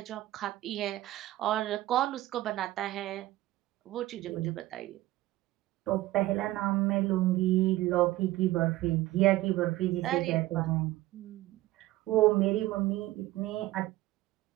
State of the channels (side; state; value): left; quieter; 16.9 dB